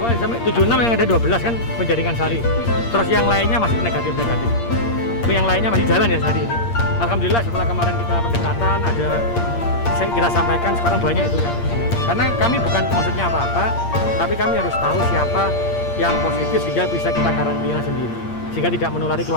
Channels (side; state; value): right; late; 8.6 ms